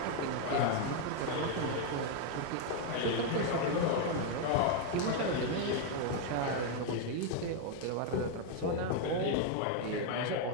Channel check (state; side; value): different; both; correlation 0.00